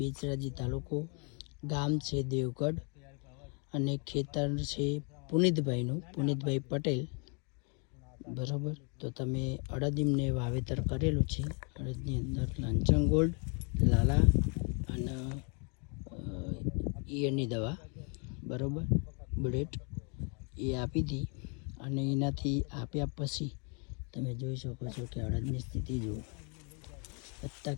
તાલુકો, ગામ છે દેવગઢ અને ખેતર છે પુનિતભાઈ પટેલ. બરાબર, તો તમે અડદીમને વાવેતર કરેલું છે. અડદની અંદર લાંચંગ ગોલ્ડ, લાલા અને ઈયળની દવા, બરાબર, બુલેટ એ આપી હતી. અને એનાથી આપ્યા પછી તમે જોઈ શકો છો કે અડદની સ્થિતિ જુઓ, પત્તા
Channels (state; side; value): quieter; right; 36.4 dB